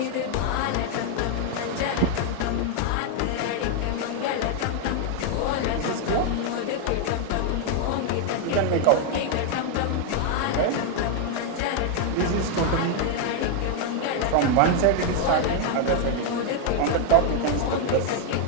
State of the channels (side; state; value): both; different; correlation 0.00